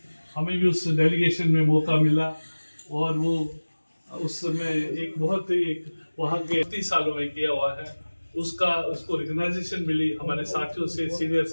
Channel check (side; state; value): both; inverted; correlation -1.00